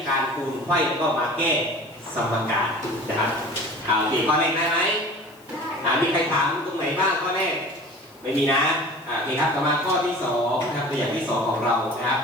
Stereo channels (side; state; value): left; noise; hiss, 28 dB below the sound